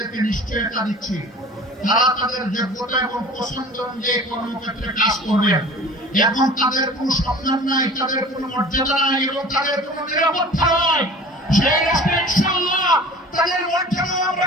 নিশ্চয়তা দিচ্ছি, তারা তাদের যোগ্যতা এবং পছন্দ অনুযায়ী কর্মক্ষেত্রে কাজ করবেন। এখন তাদের কোনো সম্মান নাই, তাদের কোনো মর্যাদা নাই এবং তাদের কোনো নিরাপত্তা নাই। সেই রাষ্ট্রে ইনশাআল্লাহ তাদের মর্যাদা আমরা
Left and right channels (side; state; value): both; normal; correlation 0.43